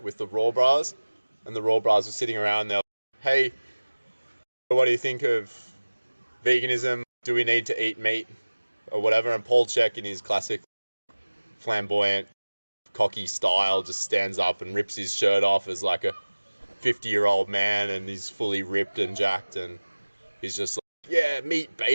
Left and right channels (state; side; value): inverted; both; correlation -1.00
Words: with the Raw Bras, and the Raw Bras were sitting around there, hey, what do you think of veganism? Do we need to eat meat or whatever? And Paul CHEK, in his classic flamboyant, cocky style, just stands up and rips his shirt off as like a 50-year-old man, and he's fully ripped and jacked, and he's just like, yeah, meat,